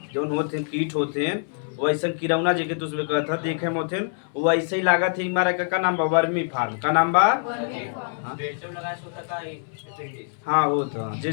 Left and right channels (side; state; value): right; silent; 62 dB below the other